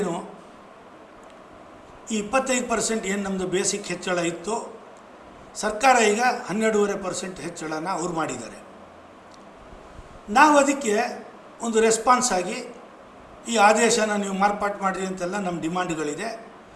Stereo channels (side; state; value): both; identical; correlation 1.00